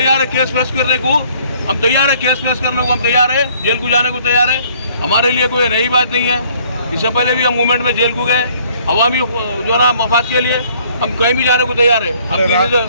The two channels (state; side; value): inverted; both; correlation -0.60